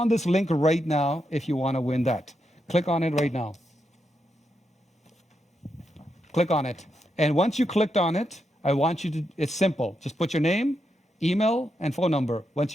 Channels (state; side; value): normal; both; correlation 0.84